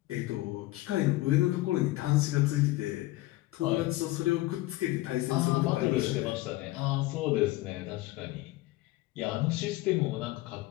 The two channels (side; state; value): right; quieter; 18.4 dB